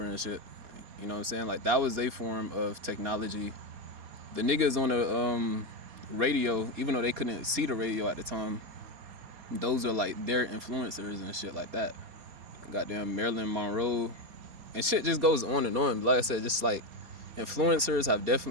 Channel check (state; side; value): late; left; 4.2 ms